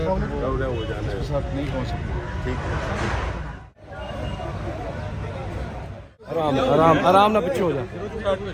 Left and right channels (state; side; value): identical; both; correlation 1.00